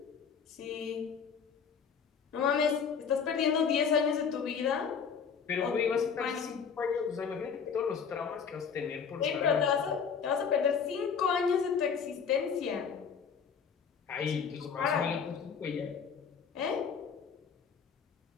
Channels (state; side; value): quieter; right; 6.5 dB